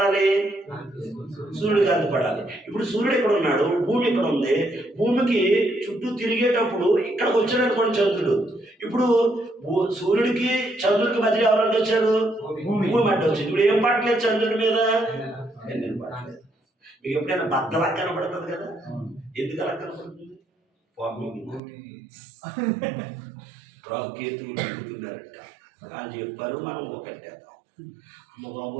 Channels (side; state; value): left; drops out; at 21.6 s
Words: సూర్యుడు కాంతి పడాలి. ఇప్పుడు సూర్యుడు ఇక్కడ ఉన్నాడు, భూమి ఇక్కడ ఉంది. భూమికి చుట్టూ తిరిగేటప్పుడు ఇక్కడికి వచ్చాడు అనుకోండి చంద్రుడు. ఇప్పుడు సూర్యుడికి చంద్రుడికి మధ్య ఎవరంటే వచ్చారు? భూమి అంటే వచ్చింది. ఇప్పుడు ఏం పడలేదు చంద్రుడి మీద? ఎన్నెలు పడలేదు. మీకు ఎప్పుడైనా బద్దలా కనపడుతుంది కదా? ఎందుకు అలా కనపడుతుంది? రాకేతులు తిరుగుతున్నారంట అని చెప్పారు. మనం ఒకటేద్దాం. అమ్మ